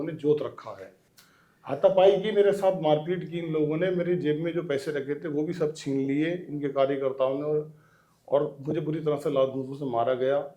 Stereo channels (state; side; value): identical; both; correlation 1.00